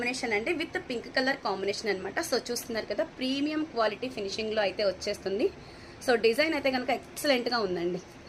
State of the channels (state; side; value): identical; both; correlation 1.00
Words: అండి, విత్ పింక్ కలర్ కాంబినేషన్ అనమాట. సో చూస్తున్నారు కదా, ప్రీమియం క్వాలిటీ ఫినిషింగ్లో అయితే వచ్చేస్తుంది. సో డిజైన్ అయితే కనుక ఎక్సలెంట్గా ఉందండి.